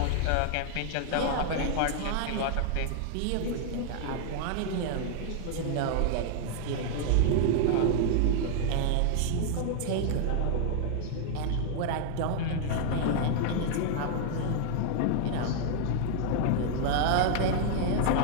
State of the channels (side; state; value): both; different; correlation 0.00